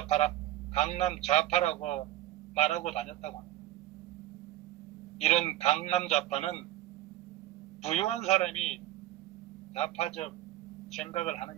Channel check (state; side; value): quieter; left; 15.2 dB